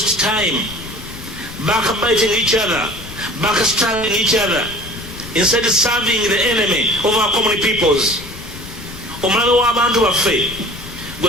time, backbiting each other, backstabbing each other, instead of serving the enemy of our common peoples. Omulabe w'abantu baffe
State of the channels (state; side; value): noise; left; rumble, 15 dB below the sound